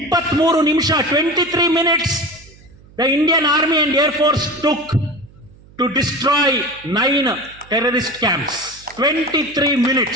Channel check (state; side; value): noise; right; hum, 25 dB below the sound